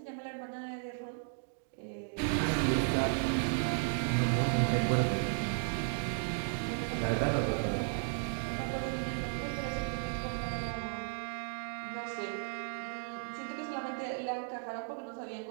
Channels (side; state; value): left; silent; digital silence